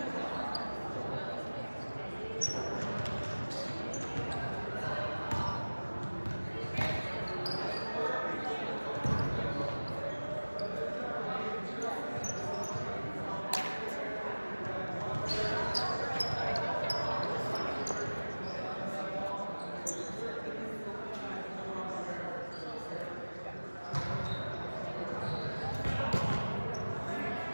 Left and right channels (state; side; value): inverted; both; correlation -1.00